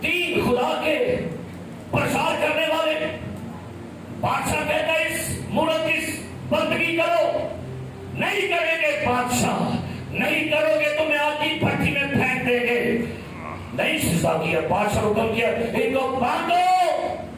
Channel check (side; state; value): both; identical; correlation 1.00